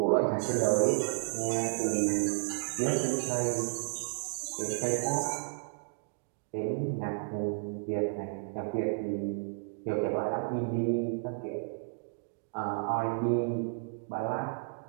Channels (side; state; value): left; silent; digital silence